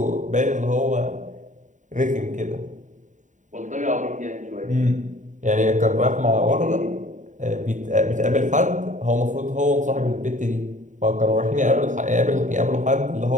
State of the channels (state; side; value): late; left; 0.36 ms